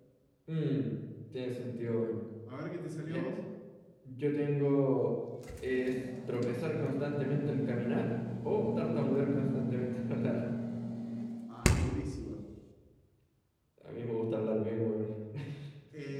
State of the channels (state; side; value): identical; both; correlation 1.00